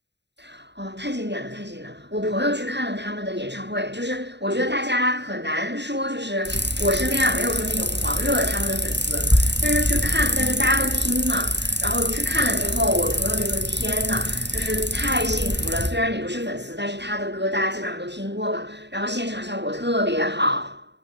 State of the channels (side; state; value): left; late; 0.50 ms